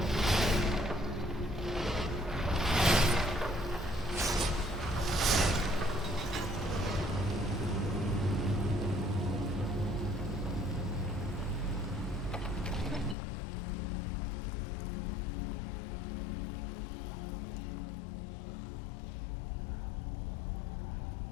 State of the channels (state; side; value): drops out; right; at 13.2 s